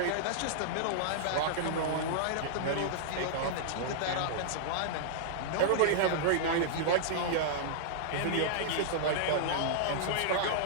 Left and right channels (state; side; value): different; both; correlation -0.02